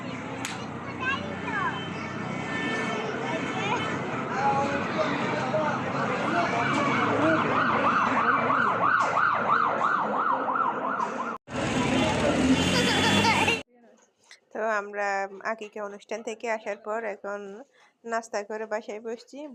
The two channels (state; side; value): identical; both; correlation 1.00